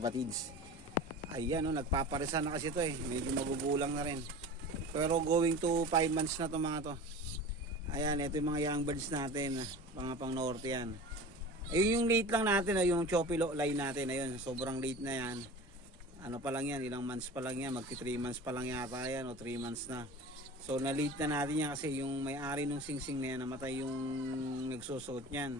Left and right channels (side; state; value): both; normal; correlation 0.36